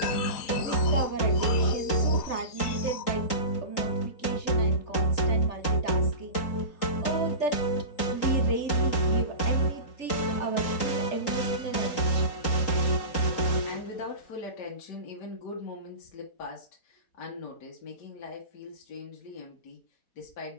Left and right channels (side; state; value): right; late; 3.8 ms